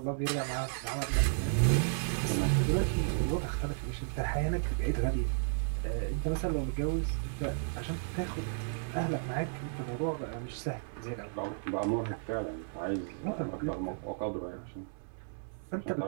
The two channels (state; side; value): silent; left; 55 dB below the other